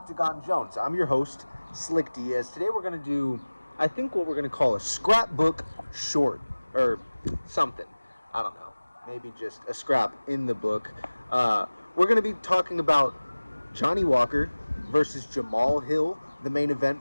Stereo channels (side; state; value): both; inverted; correlation -1.00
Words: Jones. I'm your host, Slick Diaz. Today we're going to do, I think, what we're going to call a scrapbook short or something. I don't know. Maybe just a scrap in the book. We're going to be talking about Johnny Walker versus Jamal Hill, the main event